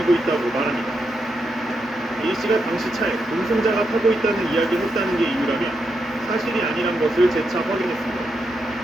있다고 말합니다. A씨가 당시 차에 동승자가 타고 있다는 이야기를 했다는 게 이유라며 사실이 아니란 것을 재차 확인했습니다.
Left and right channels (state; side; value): normal; both; correlation 0.83